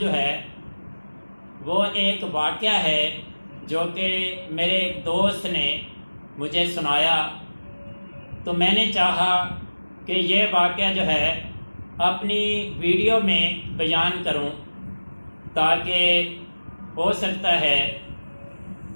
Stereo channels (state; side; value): inverted; both; correlation -1.00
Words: ہے وہ ایک واقعہ ہے جو کہ میرے ایک دوست نے مجھے سنایا، تو میں نے چاہا کہ یہ واقعہ جو ہے اپنی ویڈیو میں بیان کروں، تاکہ ہو سکتا ہے